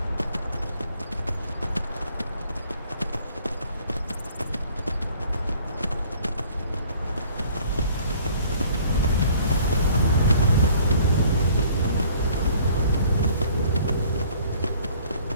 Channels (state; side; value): inverted; both; correlation -0.55